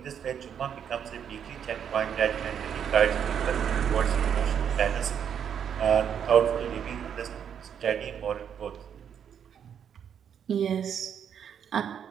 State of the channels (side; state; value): left; quieter; 8.3 dB